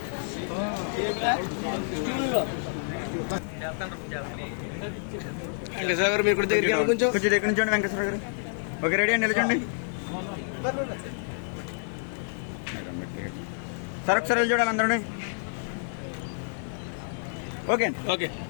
వెంకటేశ్వర మీ గుడి దగ్గర కొంచెం దగ్గర నుంచి వెంకటేశ్వర గారు. ఓకే, రెడీ అండి, నిలచండి సార్. ఒకసారి వెళ్ళి చూడాలి అందరూ. Okay okay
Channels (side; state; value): right; silent; digital silence